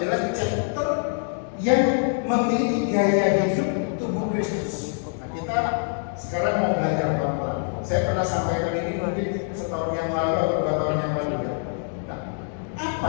chapter yang memiliki gaya hidup tubuh Kristus. Nah, kita sekarang mau belajar pelan-pelan. Saya pernah sampaikan ini mungkin setahun yang lalu atau 2 tahun yang lalu ya. Nah, apa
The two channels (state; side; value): silent; right; 57 dB below the other